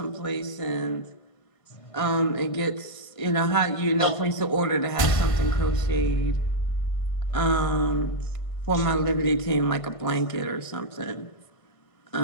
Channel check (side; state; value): right; late; 1.6 ms